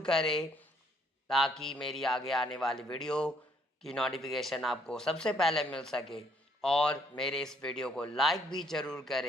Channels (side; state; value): both; normal; correlation 0.66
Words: करें, ताकि मेरी आगे आने वाली वीडियो की नोटिफिकेशन आपको सबसे पहले मिल सके, और मेरे इस वीडियो को लाइक भी ज़रूर